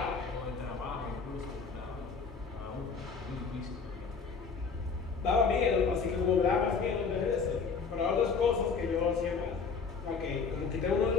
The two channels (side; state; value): right; quieter; 5.2 dB